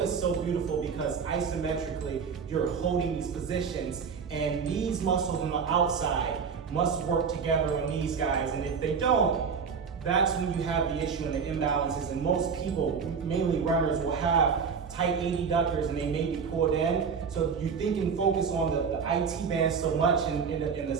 is so beautiful because isometrically, you're holding these positions, and these muscles on the outside must work together on these guys, and if they don't, that's when you have the issue and the imbalances, and most people, mainly runners, will have tight adductors and they may be pulled in. So you think and focus on the IT band so much and the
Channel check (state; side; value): quieter; left; 6.0 dB